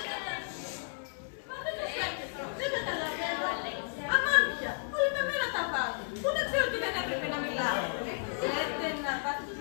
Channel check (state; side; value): silent; right; 55 dB below the other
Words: Δεν καταλαβαίνω. Αμάντια, όλοι με μένα τα βάζουν. Πού να ξέρω ότι δεν έπρεπε να μιλάω. Θέλετε να πάθετε